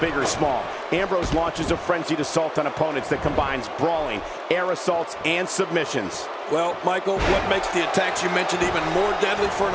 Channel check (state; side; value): identical; both; correlation 1.00